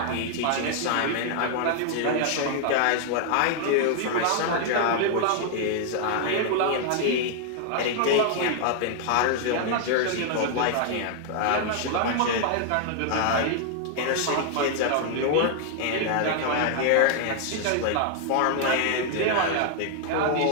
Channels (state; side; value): different; both; correlation 0.00